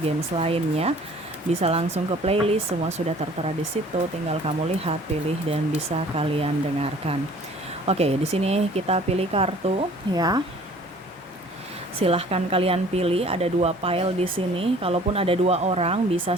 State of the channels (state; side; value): normal; both; correlation 0.51